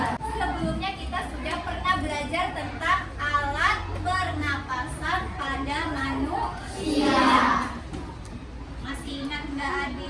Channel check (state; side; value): identical; both; correlation 1.00